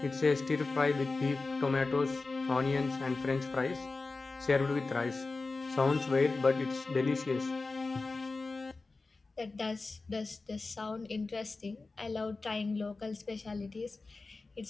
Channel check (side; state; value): right; quieter; 3.7 dB